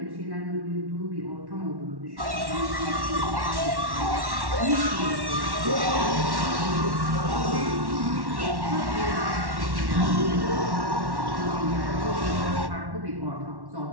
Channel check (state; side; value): late; left; 1.1 ms